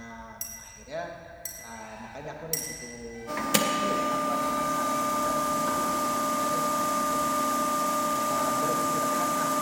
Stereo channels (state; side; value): identical; both; correlation 1.00